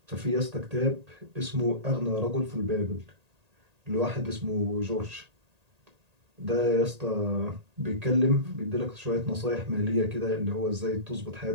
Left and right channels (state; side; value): late; left; 1.8 ms